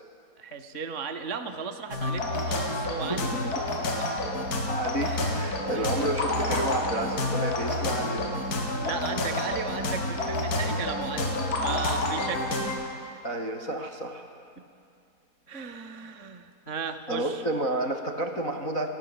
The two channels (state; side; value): late; right; 4.2 ms